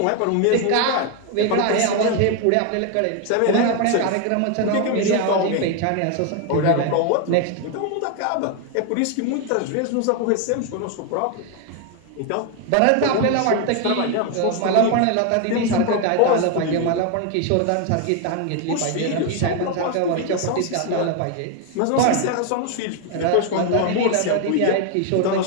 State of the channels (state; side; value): different; both; correlation 0.01